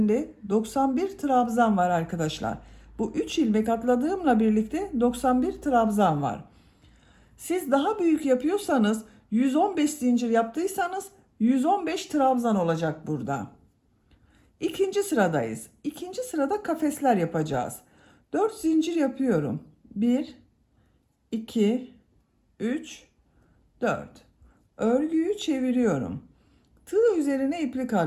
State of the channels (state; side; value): identical; both; correlation 1.00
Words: 91 trabzan var arkadaşlar. Bu 3 ilmek atladığımla birlikte 91 trabzan var. Siz daha büyük yapıyorsanız 115 zincir yaptıysanız 115 trabzan olacak burada. İkinci sıradayız. İkinci sırada kafesler yapacağız. 4 zincir yapıyorum. 1, 2, 3, 4. Örgüyü çeviriyorum. Tığ üzerine iplik